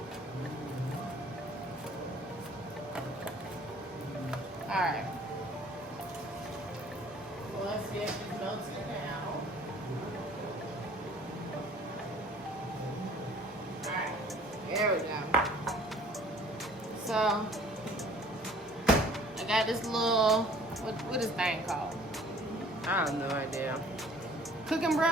Alright. Well, let's see if it's melting now. Alright. There we go. So, I got this little, what is this thing called? I have no idea. Cooking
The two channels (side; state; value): both; normal; correlation 0.53